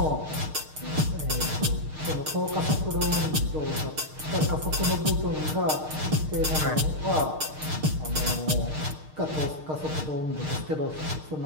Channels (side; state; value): left; late; 6.5 ms